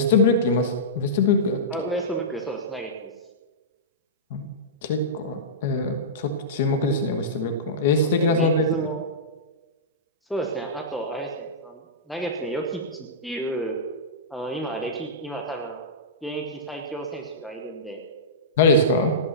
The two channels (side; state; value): both; normal; correlation -0.17